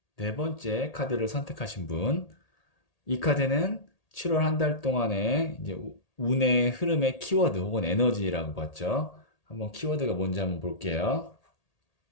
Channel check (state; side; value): late; right; 1.8 ms